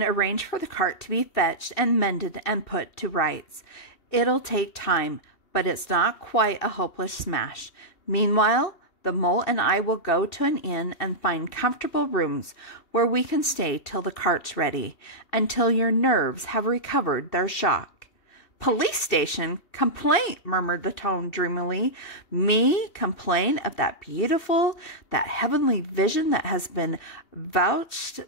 arrange for the cart to be fetched and mended and put to rights. It'll take time, but it's not quite a hopeless smash. Meanwhile, the Mole and I will go to an inn and find comfortable rooms where we can stay till the cart's ready, until your nerves have recovered their shock." "Police station? Complaint?" murmured the Toad dreamily. "Me complain of that beautiful, that heavenly vision that has been vouched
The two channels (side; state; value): right; late; 2.6 ms